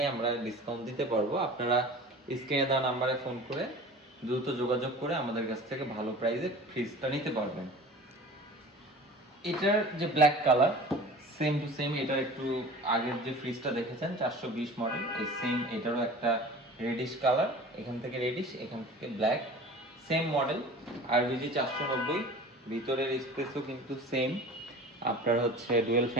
আমরা ডিসকাউন্ট দিতে পারবো। আপনারা স্ক্রিনে দেওয়া নাম্বারে ফোন করে দ্রুত যোগাযোগ করে আমাদের কাছ থেকে ভালো প্রাইসে ফ্রিজটা নিতে পারবেন। এটার যে black colour, same to same এটার একটু আগের যে ফ্রিজটা দেখেছেন 420 মডেল, এই সেম এটারও একটা রেডিশ কালার, এখান থেকে রেডিশ এখান থেকে ব্ল্যাক, সেম মডেল আরবিজি 490। ভিতরের স্পেসও কিন্তু সেম, আপনার হচ্ছে ডুয়েল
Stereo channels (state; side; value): normal; both; correlation 0.40